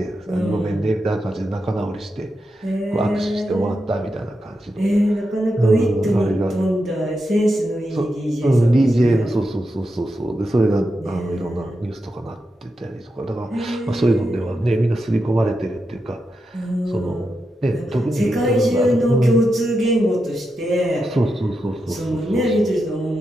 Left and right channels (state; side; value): normal; both; correlation 0.87